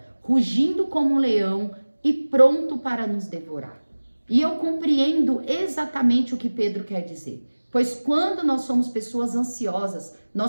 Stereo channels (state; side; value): inverted; both; correlation -1.00